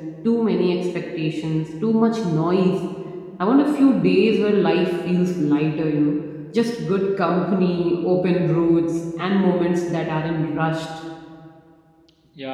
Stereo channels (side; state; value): both; identical; correlation 1.00